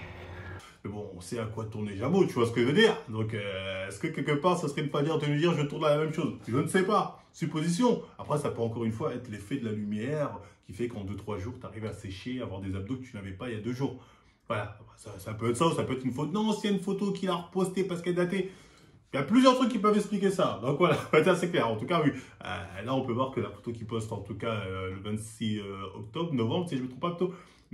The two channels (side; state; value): both; identical; correlation 1.00